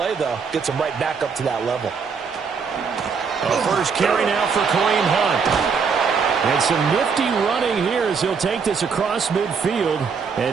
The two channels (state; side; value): quieter; left; 5.7 dB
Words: though, gets them right back up to that level. First carry now for Kareem Hunt. And some nifty running here as he'll take this across midfield